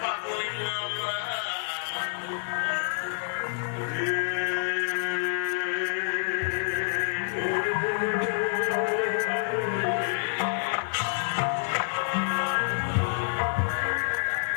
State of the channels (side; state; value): right; silent; digital silence